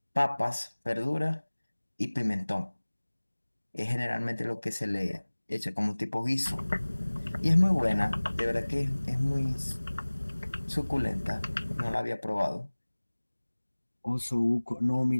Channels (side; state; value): both; inverted; correlation -1.00